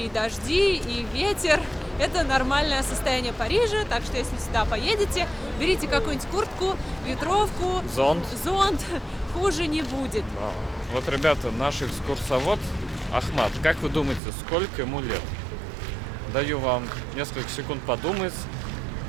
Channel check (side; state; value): left; drops out; at 14.2 s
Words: и дожди, и ветер – это нормальное состояние Парижа, так что если сюда поедете, берите какую-нибудь куртку, ветровку, зонт, хуже не будет. Да. Вот, ребята, наш экскурсовод Ахмат, как вы думаете, сколько ему лет? Даю вам несколько секунд подумать.